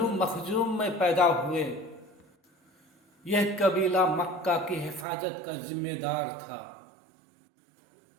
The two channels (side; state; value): left; drops out; at 5.1 s